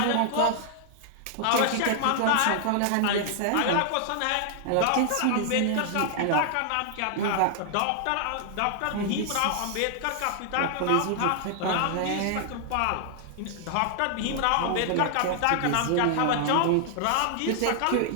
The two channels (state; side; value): different; both; correlation 0.00